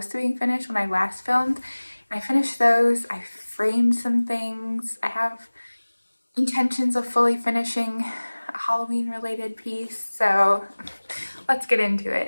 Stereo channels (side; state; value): both; inverted; correlation -1.00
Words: to being finished when I last filmed. And I finished those. I framed some things. I have intentions of fully finishing a Halloween related piece, so let's get into